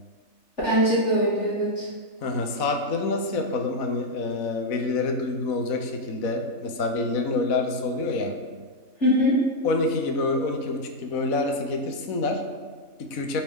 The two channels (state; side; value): late; right; 3.3 ms